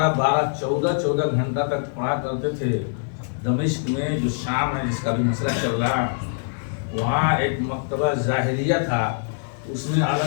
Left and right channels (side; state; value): right; silent; 58 dB below the other